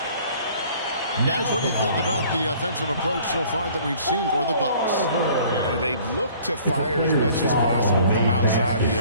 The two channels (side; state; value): both; inverted; correlation -0.54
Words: Guys, what do you think about the offensive approach so far that we've seen for the Bucks? They've looked to fire as much as possible from outside